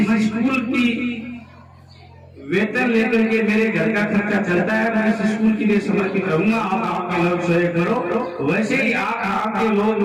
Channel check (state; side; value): identical; both; correlation 1.00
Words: स्कूल की वेतन लेकर के मेरे घर का खर्चा चलता है, मैं इस स्कूल के लिए समर्पित रहूंगा। आप आपके लोग सहयोग करो, वैसे ही आप आपके